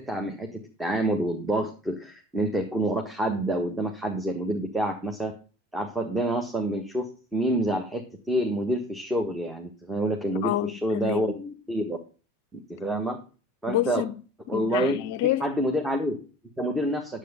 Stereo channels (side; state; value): both; normal; correlation 0.50